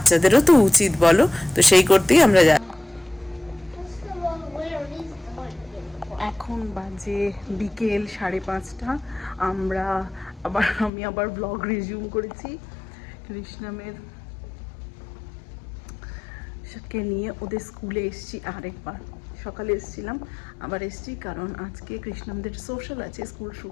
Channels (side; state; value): right; drops out; at 10.9 s